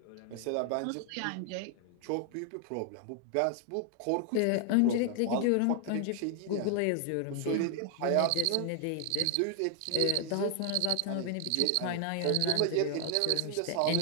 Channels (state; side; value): different; both; correlation 0.00